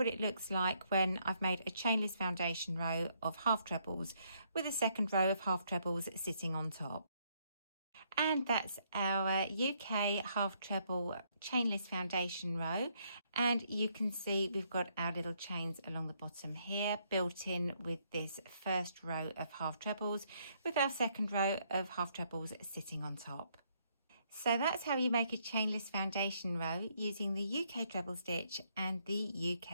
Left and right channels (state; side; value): inverted; both; correlation -0.71